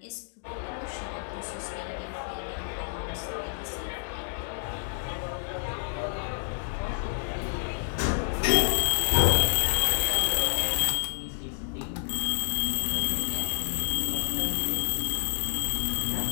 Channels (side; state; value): right; silent; digital silence